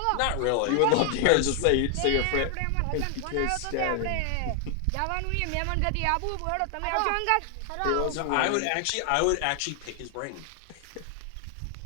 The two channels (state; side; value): different; both; correlation 0.00